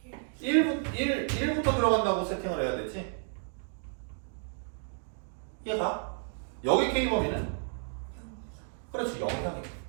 1부터 들어간다고 세팅을 해야 되지? 이해가? 여기 K 범위는? 그렇지, 0 이상이야.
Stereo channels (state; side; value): silent; left; 57 dB below the other